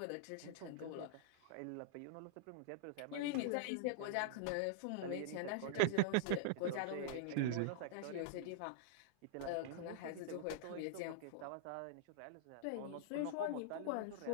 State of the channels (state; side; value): different; both; correlation -0.01